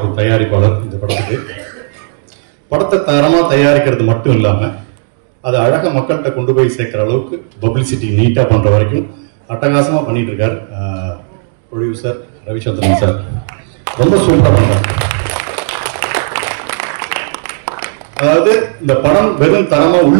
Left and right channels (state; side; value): silent; left; digital silence